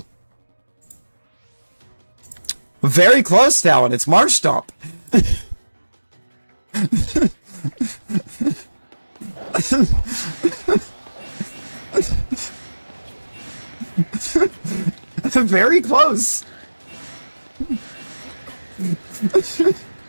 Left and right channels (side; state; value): both; inverted; correlation -1.00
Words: Very close, Talon. It's Marshtomp. Very close.